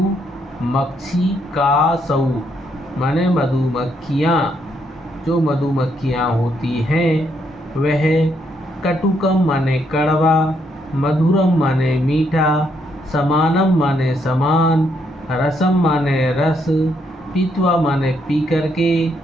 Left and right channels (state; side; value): normal; both; correlation 0.74